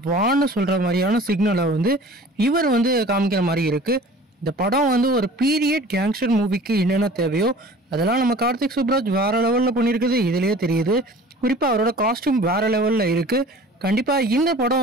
வான்னு சொல்கிற மாதிரியான சிக்னலை வந்து இவர் வந்து காமிக்கிற மாதிரி இருக்குது. இந்த படம் வந்து ஒரு பீரியட் கேங்ஸ்டர் மூவிக்கு என்னென்ன தேவையோ அதெல்லாம் நம்ம கார்த்திக் சுப்ராஜ் வேறு லெவலில் பண்ணியிருக்குது. இதுலேயே தெரியுது. குறிப்பாக அவரோட காஸ்டியூம் வேறு லெவலில் இருக்குது. கண்டிப்பாக இந்த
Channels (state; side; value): normal; both; correlation 0.44